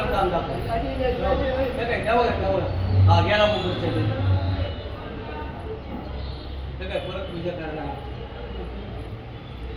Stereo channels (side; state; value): both; identical; correlation 1.00